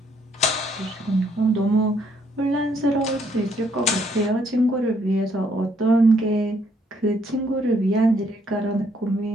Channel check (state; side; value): normal; both; correlation 0.69